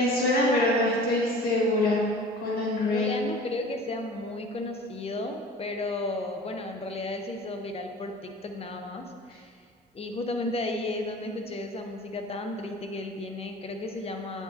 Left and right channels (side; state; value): both; normal; correlation 0.42